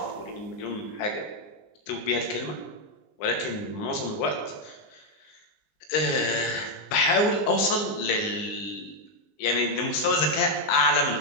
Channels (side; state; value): right; late; 19 ms